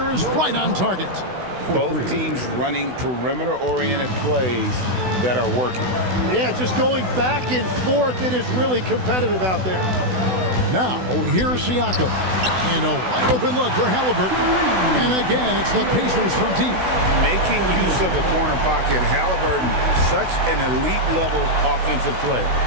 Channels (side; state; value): left; late; 16 ms